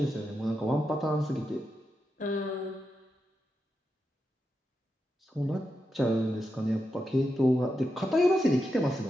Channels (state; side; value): normal; both; correlation 0.87